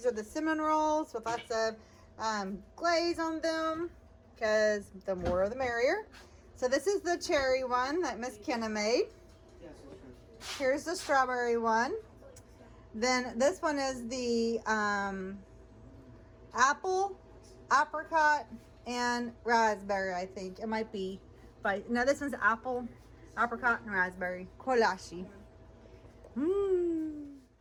are the cinnamon rolls with lots of glaze on them, because the more the merrier. So this is the cherry one that Miss Kenna made. Here's the strawberry one. Then this one is the apple, apricot, and raspberry, I think. It might be. But no, this one's apple, apricot, and raspberry. Kolache. Mmm.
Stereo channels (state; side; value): identical; both; correlation 1.00